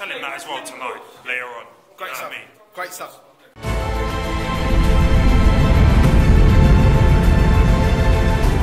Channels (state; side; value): identical; both; correlation 1.00